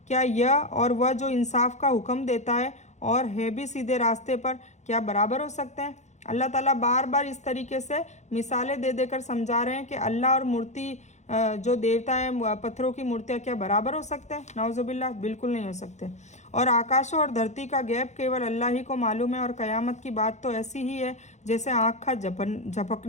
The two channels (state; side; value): late; right; 0.34 ms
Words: क्या यह और वह जो इंसाफ का हुक्म देता है और है भी सीधे रास्ते पर, क्या बराबर हो सकते हैं? अल्लाह ताला बार बार इस तरीके से मिसालें दे देकर समझा रहे हैं कि अल्लाह और मूर्ति जो देवता है, पत्थरों की मूर्तियाँ, क्या बराबर हो सकते हैं? नाउजुबिल्लाह, बिल्कुल नहीं हो सकते। और आकाशों और धरती का गैप केवल अल्लाह ही को मालूम है। और क़यामत की बात तो ऐसी ही है जैसे आँख का